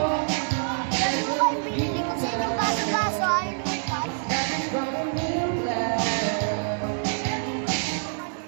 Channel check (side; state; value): left; silent; 58 dB below the other